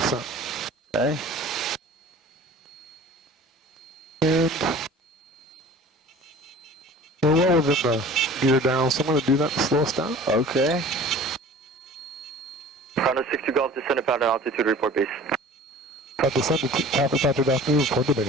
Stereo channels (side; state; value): both; normal; correlation 0.44